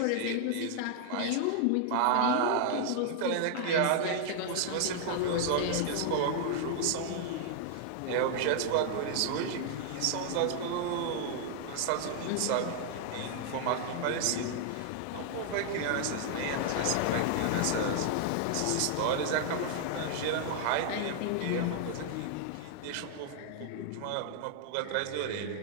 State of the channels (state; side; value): different; both; correlation 0.00